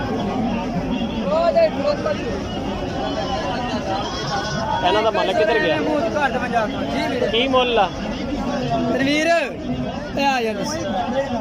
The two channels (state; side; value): identical; both; correlation 1.00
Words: इन्हों का मालिक किधर गया की मुल आ तनवीर